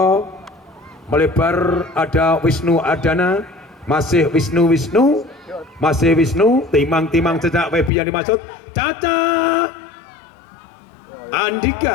melebar, ada Wisnu Ardana, masih Wisnu, timang sejak Wepi yang dimaksud Caca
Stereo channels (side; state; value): right; drops out; at 7.9 s